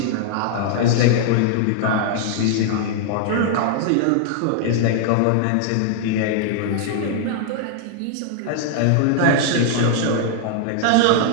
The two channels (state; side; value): different; both; correlation -0.01